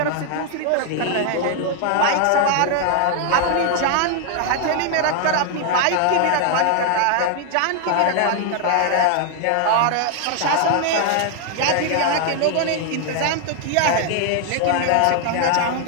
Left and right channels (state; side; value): different; both; correlation 0.00